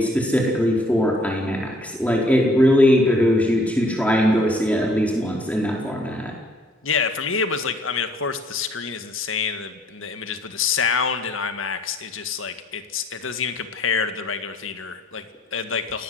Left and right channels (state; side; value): normal; both; correlation 0.61